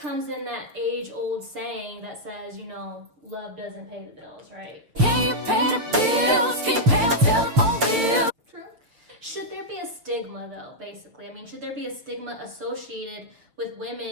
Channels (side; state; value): left; late; 6.7 ms